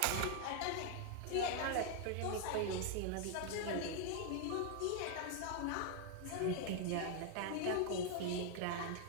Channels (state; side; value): different; both; correlation 0.00